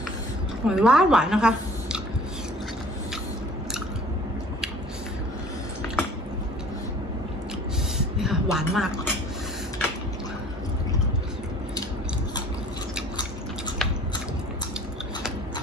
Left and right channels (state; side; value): normal; both; correlation 0.49